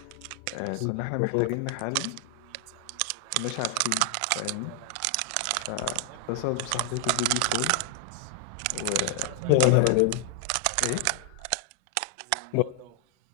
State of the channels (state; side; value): different; both; correlation 0.00